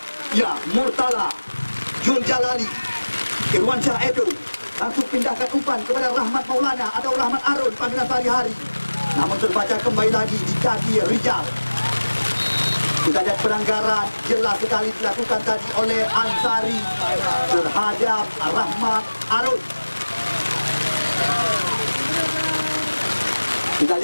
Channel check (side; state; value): both; inverted; correlation -1.00